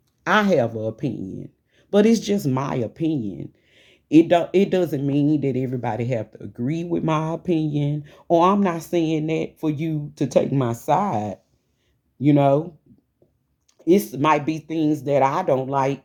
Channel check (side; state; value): both; identical; correlation 1.00